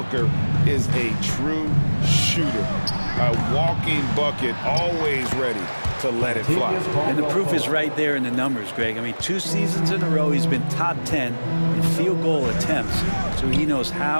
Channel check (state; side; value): inverted; both; correlation -1.00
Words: is a true shooter. A walking bucket, always ready to let it fly. And the proof is right there in the numbers, Greg. I mean, 2 seasons in a row, he's been top 10 in field goal attempts. So he knows